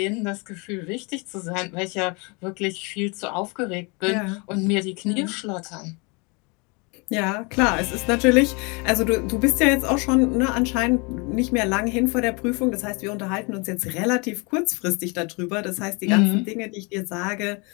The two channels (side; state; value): right; quieter; 30.3 dB